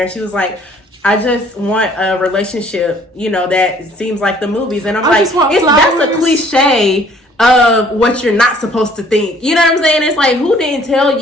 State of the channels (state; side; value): normal; both; correlation 0.58